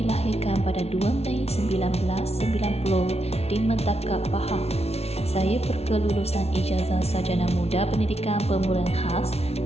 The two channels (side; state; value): right; late; 0.30 ms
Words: pada 2 Mei 1990 di Metakap, Pahang. Saya berkelulusan ijazah sarjana muda pendidikan pemulihan khas